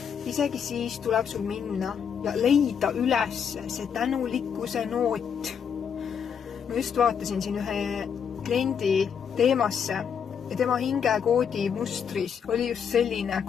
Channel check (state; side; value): quieter; right; 7.4 dB